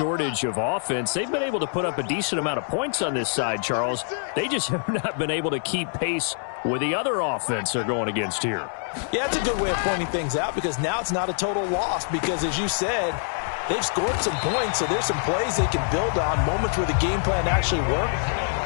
of offense. They've been able to put up a decent amount of points on this side, Charles. They just have not been able to keep pace with the other offense they're going against here. Yeah, that's a good way of pointing things out because now it's not a total loss because, as you said, they've scored some points, so there's some plays they can build on, moments where the game plan actually worked.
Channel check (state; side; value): silent; right; digital silence